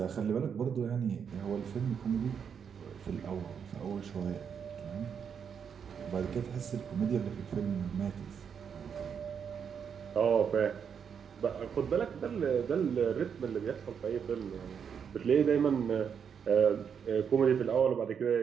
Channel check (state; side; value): quieter; left; 7.2 dB